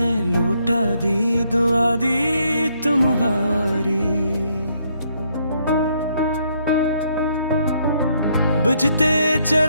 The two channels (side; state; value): both; inverted; correlation -0.72